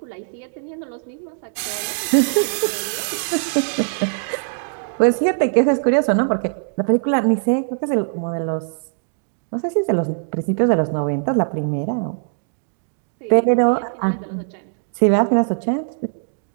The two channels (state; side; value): silent; left; digital silence